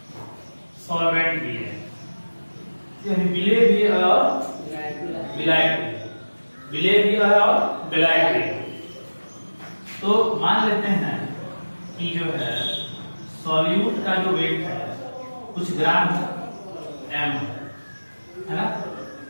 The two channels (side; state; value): both; inverted; correlation -1.00